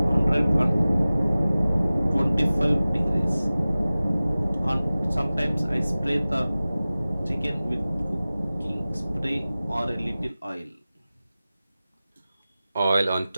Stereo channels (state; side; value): inverted; both; correlation -0.97